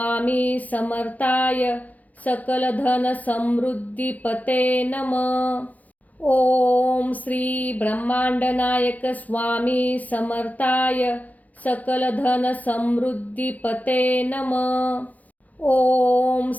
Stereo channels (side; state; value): right; late; 0.078 ms